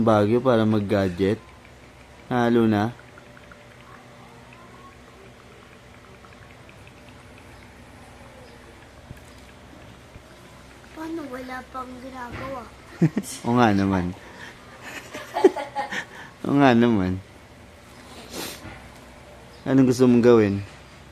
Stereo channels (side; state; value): both; identical; correlation 1.00